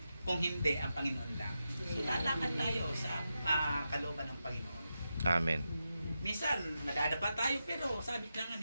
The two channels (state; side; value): inverted; both; correlation -0.88